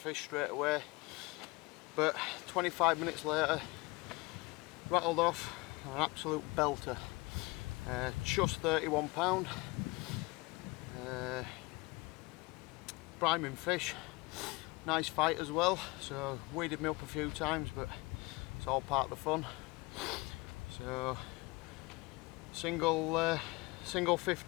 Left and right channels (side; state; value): right; quieter; 24.4 dB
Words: straight away. But 25 minutes later, rattled off an absolute belter. Just £31. Priming fish, nice fight as well, so weeded me up a few times, but it's all part of the fun. So single